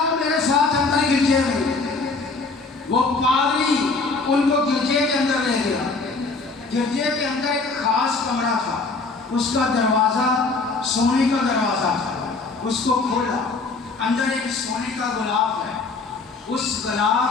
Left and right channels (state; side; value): quieter; right; 3.9 dB